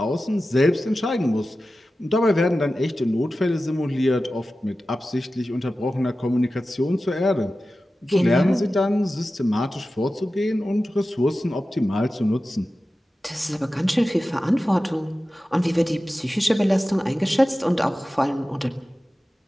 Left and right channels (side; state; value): both; normal; correlation 0.94